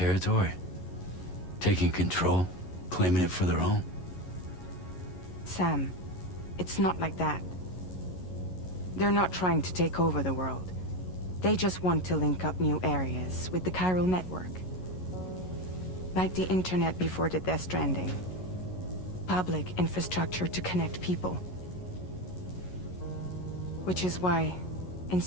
Taking control? Claiming it for their own? Sam, it's not like that. They're not trying to take over the world. They just want to link up new areas with the chiral network. Like the internet before the Death Stranding. Public infrastructure to connect people. Which is why,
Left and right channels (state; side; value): late; right; 11 ms